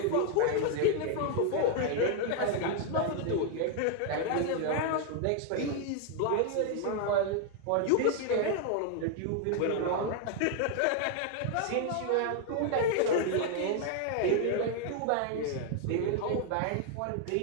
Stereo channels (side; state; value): both; different; correlation 0.00